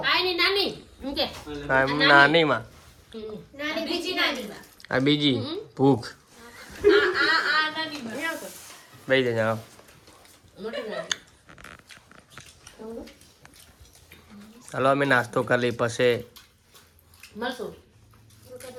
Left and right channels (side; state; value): both; identical; correlation 1.00